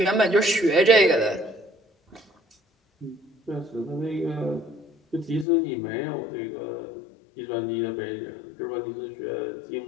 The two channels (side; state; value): right; drops out; at 5.5 s